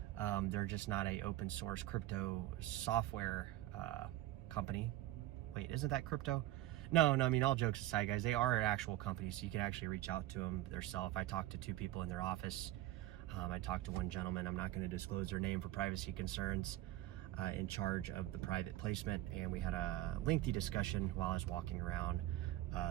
They're just not a open source crypto software company. Wait, isn't that crypto? No, I mean, all jokes aside, guys, they are an actual company, so you can actually reach out to them themselves. I talked to two people in their office. I talked to one gentleman. I'm not going to disclose their name for privacy concerns, in charge of the private placement, and we had a lengthy discussion while I was walking around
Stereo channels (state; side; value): quieter; left; 14.9 dB